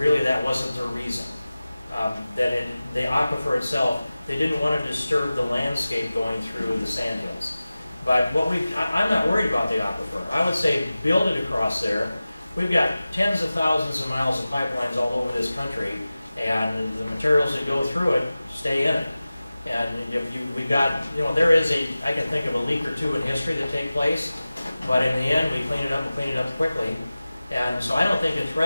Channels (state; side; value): inverted; both; correlation -0.96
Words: that wasn't their reason. The aquifer itself, they didn't want to disturb the landscape going through the sandhills. But I'm not worried about the aquifer. I would say build it across there. We've got tens of thousands of miles of pipelines all over this country, and the materials that go through it stay in it. And we've got, there is I can think of a leak or two in history that take place, but in the end we clean it up and clean it up quickly. And so I don't think it